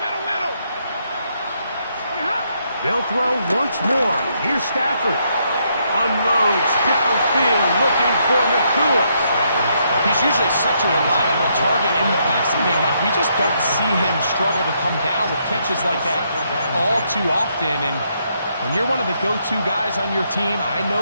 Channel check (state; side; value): inverted; both; correlation -0.75